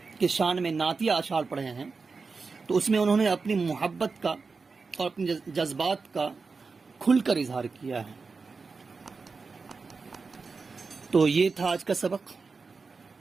کے شان میں نعتیہ اشعار پڑھے ہیں، تو اس میں انہوں نے اپنی محبت کا اور اپنے جذبات کا کھل کر اظہار کیا ہے۔ تو یہ تھا آج کا سبق۔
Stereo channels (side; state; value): left; quieter; 4.5 dB